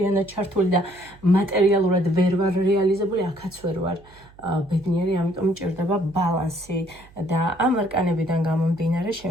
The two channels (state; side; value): noise; right; hum, 25 dB below the sound